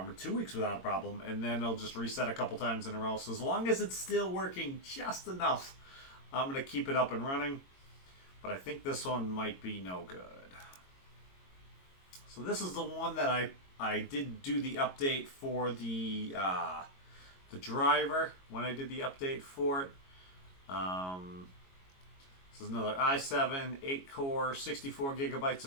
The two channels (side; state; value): right; late; 22 ms